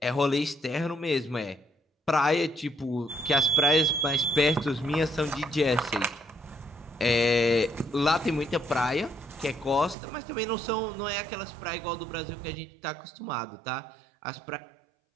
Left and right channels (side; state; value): left; drops out; at 10.0 s